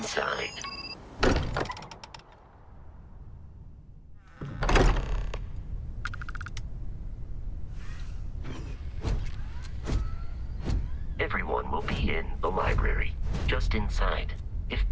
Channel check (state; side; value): identical; both; correlation 1.00